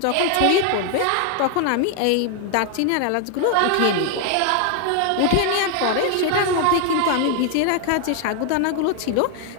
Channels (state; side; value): different; both; correlation 0.00